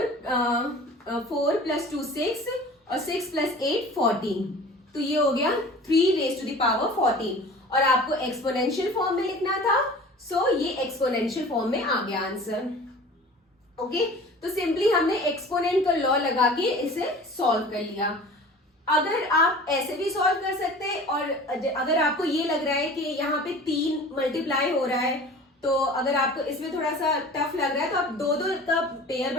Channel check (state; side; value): normal; both; correlation 0.42